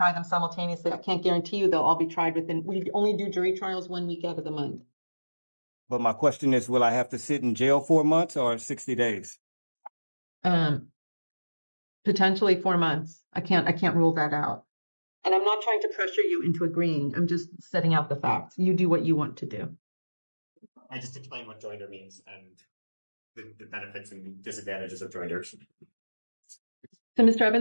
them simultaneously, I can't guarantee you they'll all be tried we only do jury trials 1 week out of the month. But my question is, will I have to sit in jail 4 months or 60 days? Potentially 4 months. I can't rule that out. And I'm not trying to pressure you into agreeing. I'm just setting out the facts. You do what you want to do. I just explained what joinder means and the benefits and disadvantages of joinders. So, Mr.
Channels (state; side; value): inverted; both; correlation -1.00